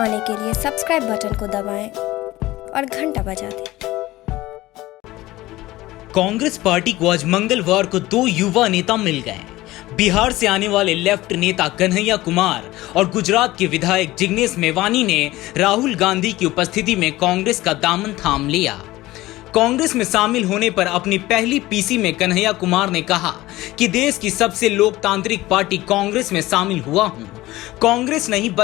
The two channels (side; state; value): right; quieter; 17.8 dB